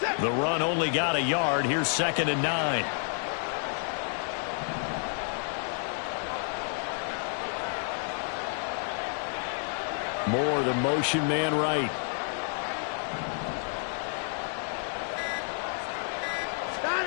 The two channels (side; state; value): right; silent; 57 dB below the other